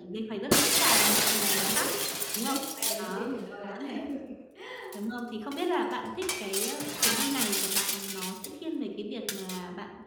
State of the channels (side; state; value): both; identical; correlation 1.00